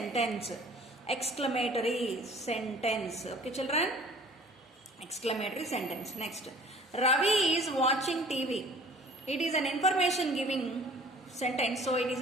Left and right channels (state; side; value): normal; both; correlation 0.50